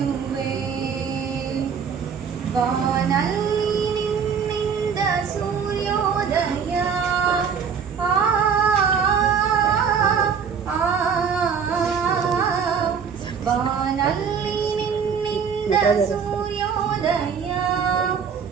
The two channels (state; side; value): quieter; left; 6.7 dB